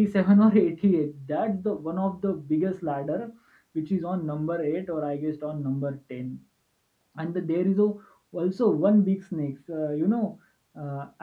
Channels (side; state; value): both; identical; correlation 1.00